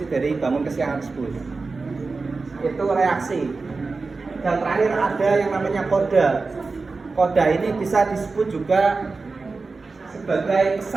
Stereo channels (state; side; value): quieter; left; 4.0 dB